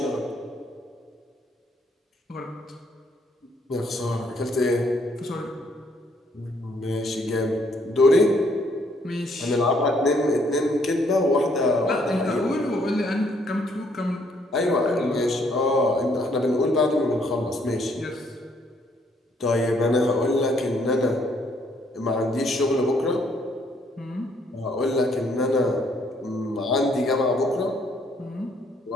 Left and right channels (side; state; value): both; normal; correlation 0.68